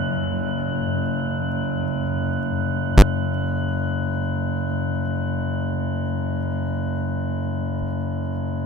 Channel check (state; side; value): normal; both; correlation 0.59